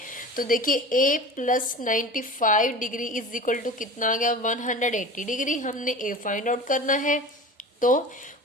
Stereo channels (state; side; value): normal; both; correlation 0.35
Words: तो देखिए a plus 95 degree is equal to कितना आ गया, 180 डिग्री। हमने a फाइंड आउट करना है, तो